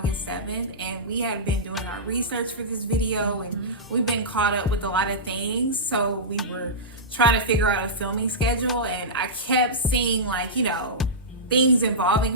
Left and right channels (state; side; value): normal; both; correlation -0.16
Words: 7th. And we had been doing our research for this video. And we've been caught up with a lot of things. So we were trying to figure out a filming schedule. And I kept seeing, like, you know, things